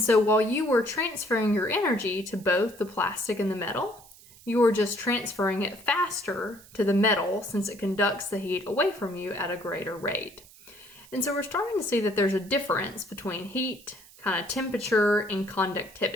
so while you were transferring your energy to both the plastic and the metal, you are just transferring it faster to the metal since it conducts the heat away from you at a greater rate. And so we're starting to see that there's a difference between heat, kind of temperature, and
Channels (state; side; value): noise; right; hiss, 23 dB below the sound